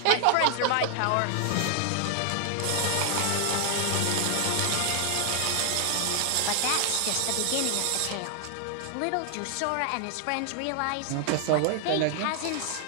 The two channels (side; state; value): both; different; correlation 0.00